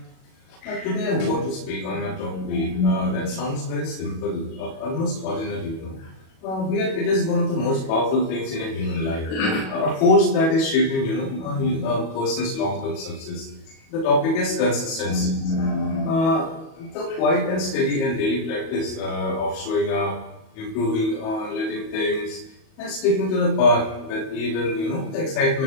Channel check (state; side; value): late; right; 37 ms